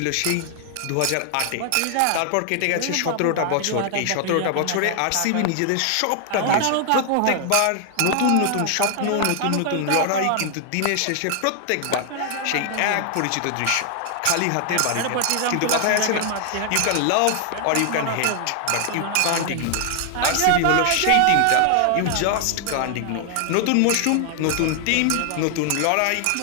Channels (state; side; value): different; both; correlation 0.00